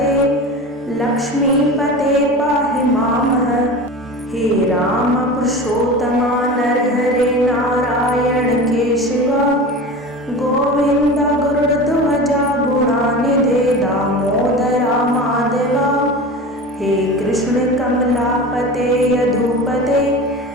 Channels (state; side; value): normal; both; correlation 0.32